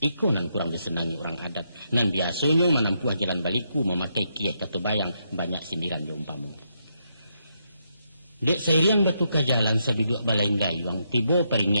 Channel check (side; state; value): both; inverted; correlation -0.79